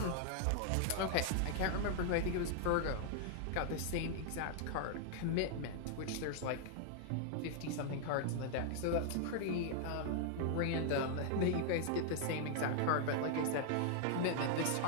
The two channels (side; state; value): both; different; correlation 0.00